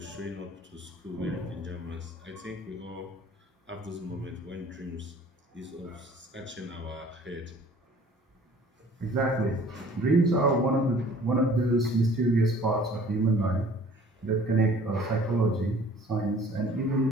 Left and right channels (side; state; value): both; normal; correlation 0.52